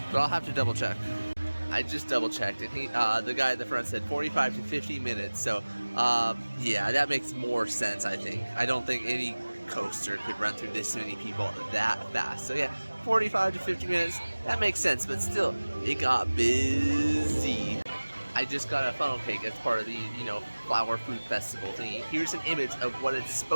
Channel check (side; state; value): both; inverted; correlation -1.00